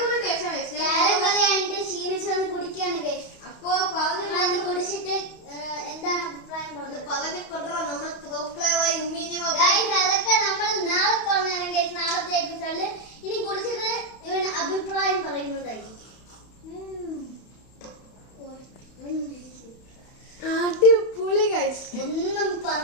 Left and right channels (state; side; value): late; right; 31 ms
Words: ടേസ്റ്റാണ്. അപ്പൊ കുടിച്ചിട്ട് എന്താണ് അഭിപ്രായം അതൊക്കെ നമ്മൾ നാളെ പറഞ്ഞാണ് നാളത്തെ എപ്പിസോഡില്. ഇനി കുടിച്ചിട്ട് ഇവന് അഭിപ്രായം പറയുന്നതായിരിക്കും. അടിപൊളി ഗൈസ്, ഒന്നും